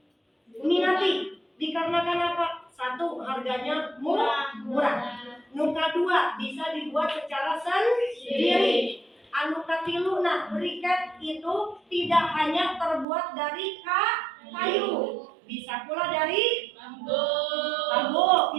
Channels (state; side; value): drops out; left; at 13.1 s